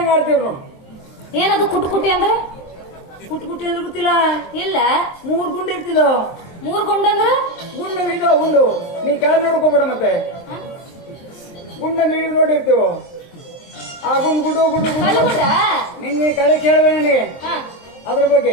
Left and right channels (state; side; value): late; right; 23 ms